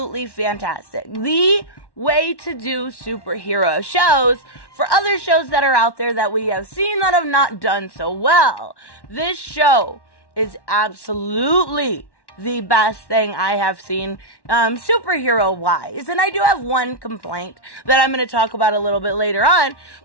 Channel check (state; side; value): late; right; 1.1 ms